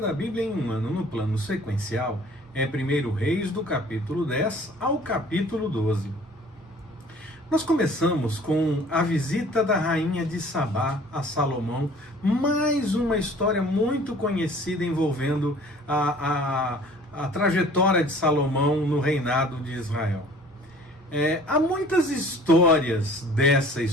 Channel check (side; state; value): both; normal; correlation 0.50